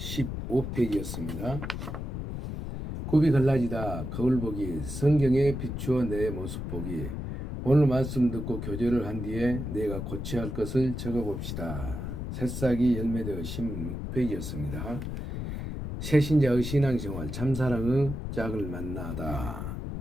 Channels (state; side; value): noise; left; rumble, 5 dB below the sound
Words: 굽이 갈라지다 거울 보기 성경에 비추어 내 모습 보기. 오늘 말씀 듣고 교제를 한 뒤에 내가 고쳐야 할 것을 적어봅시다. 새싹이 열매되어 16페이지였습니다. 새신자의 신앙생활 참사랑의 짝을 만나다.